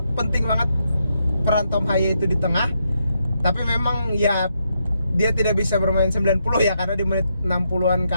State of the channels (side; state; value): both; inverted; correlation -0.80